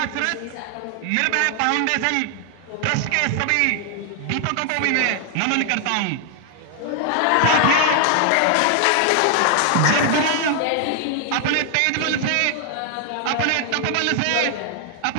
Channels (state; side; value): different; both; correlation 0.00